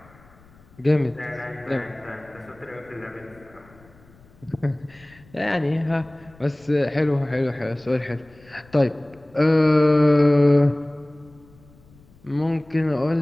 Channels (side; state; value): left; noise; rumble, 27 dB below the sound